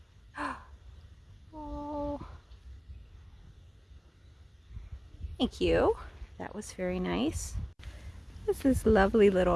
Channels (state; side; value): identical; both; correlation 1.00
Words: Oh, thank you. That was very nice. This is this lovely